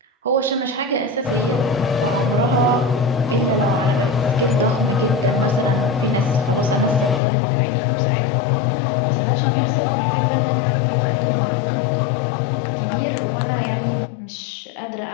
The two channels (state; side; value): drops out; right; at 7.2 s